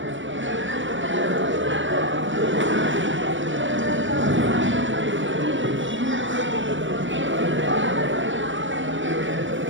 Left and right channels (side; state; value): left; late; 0.56 ms